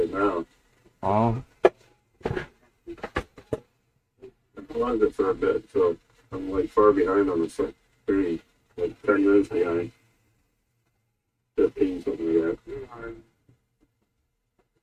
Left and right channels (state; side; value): identical; both; correlation 1.00